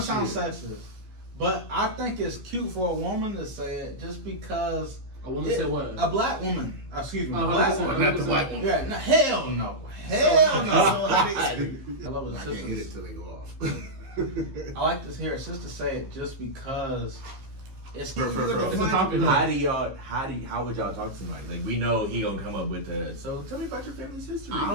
to all sound this sexist, but I think it's cute for a woman to say it just because. A woman said what? A black woman. Excuse me. Oh, A black 100%. woman. Not the white one. Yeah. No, hell no. Hell no. I love I his can't hit it sisters. till they go off. I like to hear a sister say it just because it's For It's a topic. how would y'all talk to somebody? Like we know he gonna come up with so tell me about your family's history. I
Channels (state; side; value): late; left; 15 ms